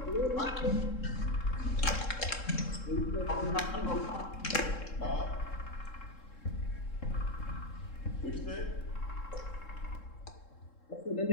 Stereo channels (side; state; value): right; late; 3.7 ms